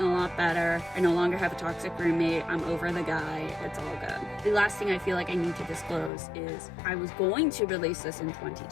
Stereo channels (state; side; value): drops out; right; at 6.1 s